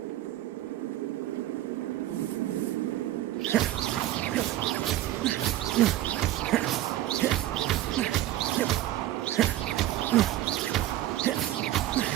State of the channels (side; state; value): left; quieter; 14.1 dB